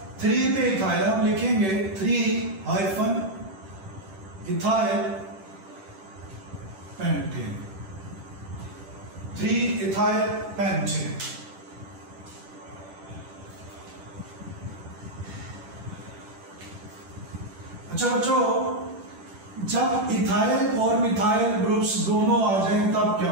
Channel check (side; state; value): left; late; 10 ms